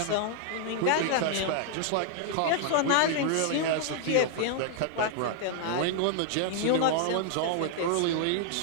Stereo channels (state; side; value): different; both; correlation 0.00